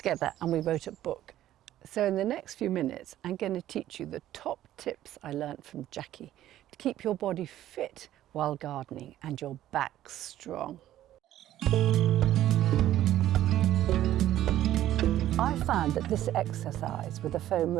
and we wrote a book. So in the next few minutes, I'm going to teach you the top tips I learned from Jackie to keep your body fit while gardening and your back strong. I found that this exercise with a foam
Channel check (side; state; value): left; quieter; 13.0 dB